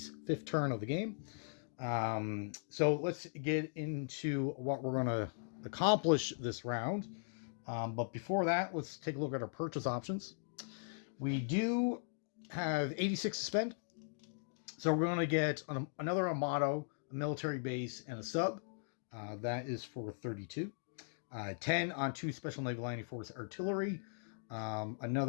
fifth turn of the game. So let's get into what we're going to accomplish this round. But before that, let's take a look at our purchase options. We do have 86 to spend. So we're going to get another Armado, a military base, and a sub. That is for 32. 10 on 2 Special Naval Landing Force artillery.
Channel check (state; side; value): silent; right; digital silence